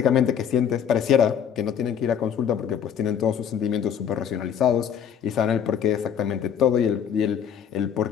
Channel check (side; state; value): right; quieter; 8.4 dB